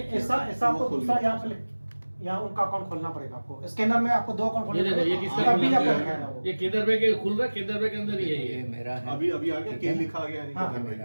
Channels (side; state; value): both; inverted; correlation -1.00